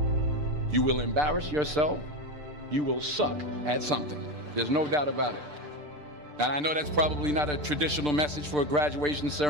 You will embarrass yourself. You will suck at something. There's no doubt about it. And I know that's probably not a traditional message for a graduation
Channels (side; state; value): left; late; 6.7 ms